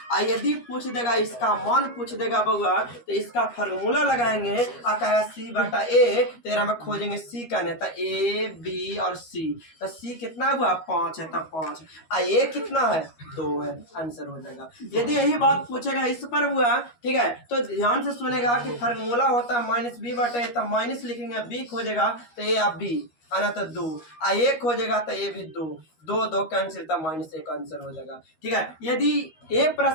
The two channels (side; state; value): right; late; 13 ms